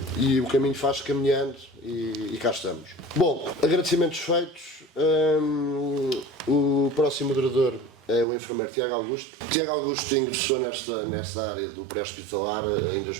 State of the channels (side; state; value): left; drops out; at 8.2 s